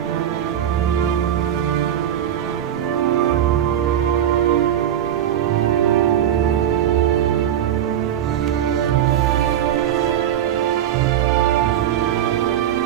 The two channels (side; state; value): left; quieter; 10.5 dB